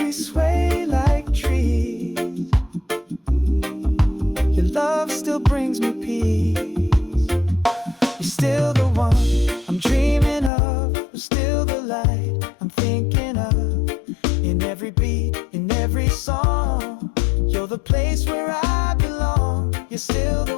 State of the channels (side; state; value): right; drops out; at 10.5 s